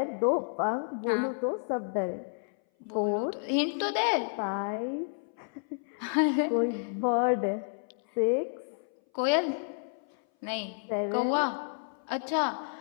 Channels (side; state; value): right; silent; 57 dB below the other